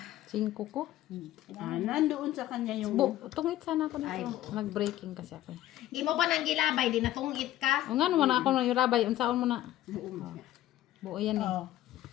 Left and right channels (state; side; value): quieter; right; 13.9 dB